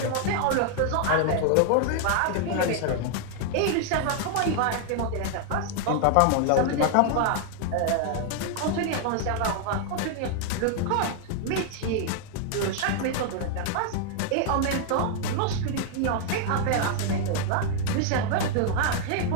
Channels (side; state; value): both; different; correlation 0.00